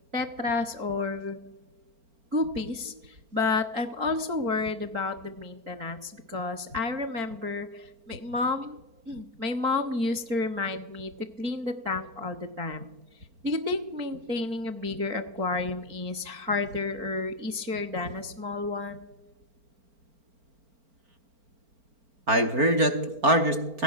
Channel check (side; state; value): left; late; 4.4 ms